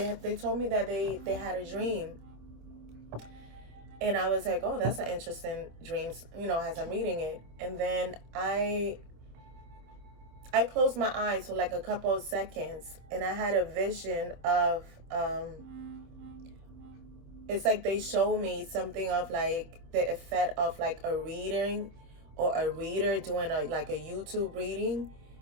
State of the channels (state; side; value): late; left; 26 ms